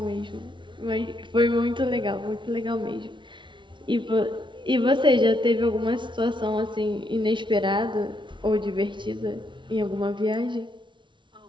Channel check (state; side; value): late; left; 0.24 ms